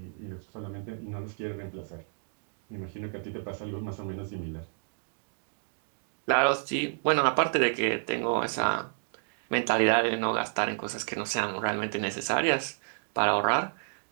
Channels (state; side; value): silent; left; 58 dB below the other